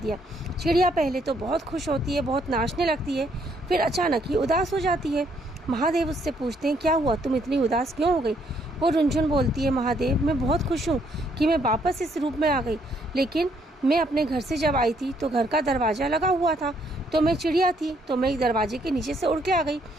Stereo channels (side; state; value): both; normal; correlation 0.70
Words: चिड़िया पहले तो बहुत खुश होती है, बहुत नाचने लगती है, फिर अचानक ही उदास हो जाती है। महादेव उससे पूछते हैं, क्या हुआ, तुम इतनी उदास क्यों हो गई। वो रुनझुन बोलती है, महादेव मैं बहुत खुश हूँ कि मैं वापस इस रूप में आ गई, लेकिन मैं अपने घर से जब आई थी तो घर का दरवाज़ा लगा हुआ था, तो मैं चिड़िया थी तो मैं दरवाजे के नीचे से उड़ के आ गई।